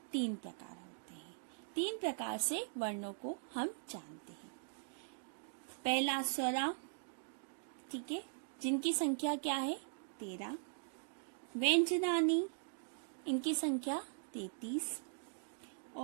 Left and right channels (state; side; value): silent; left; digital silence